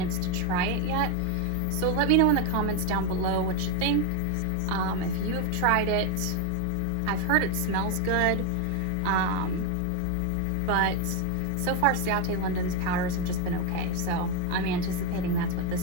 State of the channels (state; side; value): different; both; correlation 0.02